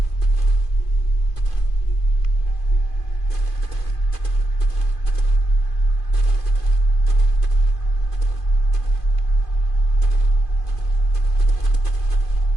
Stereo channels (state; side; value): late; right; 2.5 ms